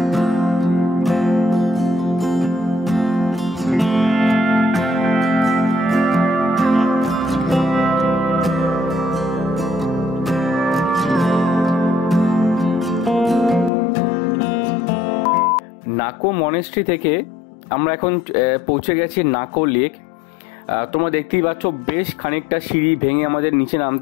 নাকো মনেস্ট্রি থেকে আমরা এখন পৌঁছে গেছি নাকো লেক। তোমরা দেখতেই পাচ্ছ বেশ খানিকটা সিঁড়ি ভেঙে আমাদের নিচে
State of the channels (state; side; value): drops out; right; at 13.7 s